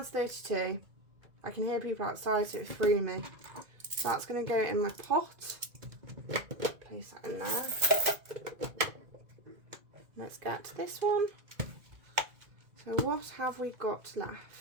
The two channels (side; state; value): left; late; 2.0 ms